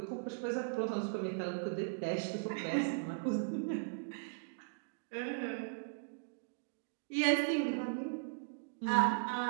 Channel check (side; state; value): left; silent; digital silence